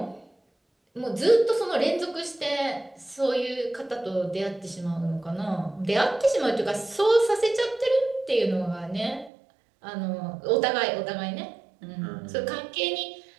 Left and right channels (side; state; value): left; drops out; at 9.3 s